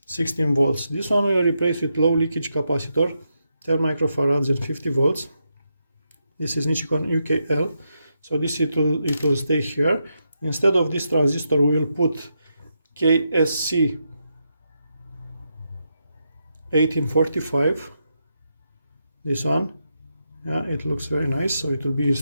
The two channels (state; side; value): inverted; both; correlation -0.83